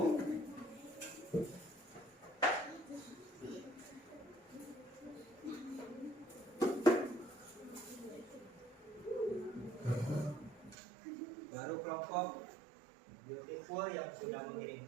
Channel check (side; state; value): left; drops out; at 10.8 s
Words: Baru kelompok Beautiful yang sudah